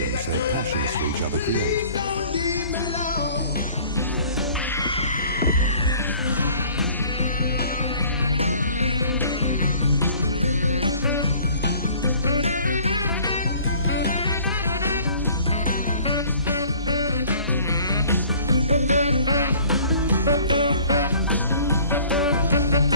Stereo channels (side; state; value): both; inverted; correlation -0.52